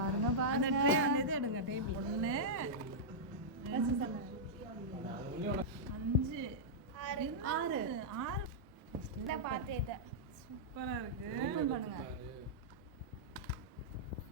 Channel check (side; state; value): both; normal; correlation -0.10